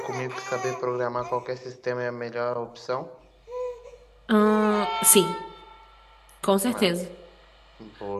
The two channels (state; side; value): identical; both; correlation 1.00